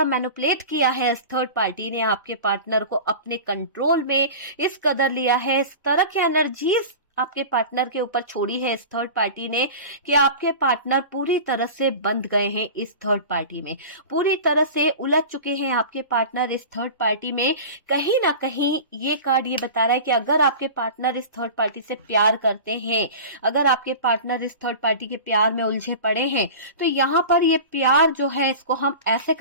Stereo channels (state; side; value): inverted; both; correlation -0.34